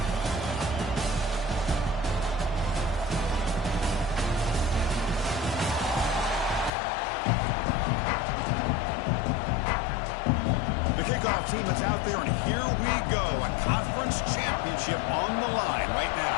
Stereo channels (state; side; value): drops out; right; at 6.7 s